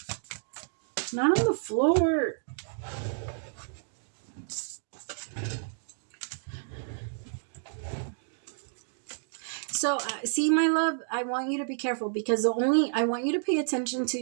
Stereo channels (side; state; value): left; silent; digital silence